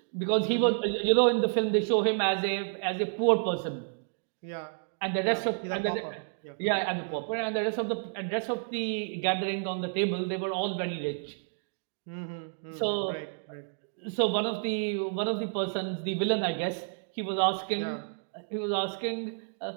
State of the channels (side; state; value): left; silent; digital silence